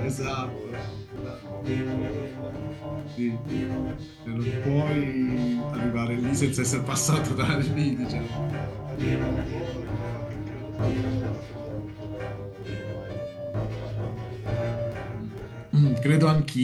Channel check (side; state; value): both; identical; correlation 1.00